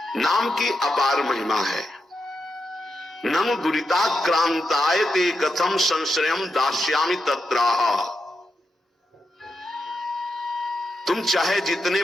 नाम की अपार महिमा है। ननु दुरिताक्रांतायते कथम संश्रयम दास्यामि तत्राह। तुम चाहे जितने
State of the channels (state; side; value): normal; both; correlation 0.86